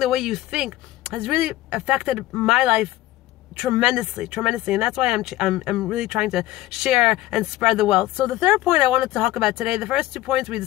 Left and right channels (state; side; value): quieter; right; 16.2 dB